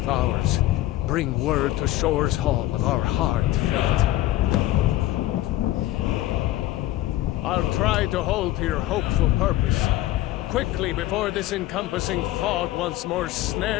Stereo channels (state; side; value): quieter; right; 15.4 dB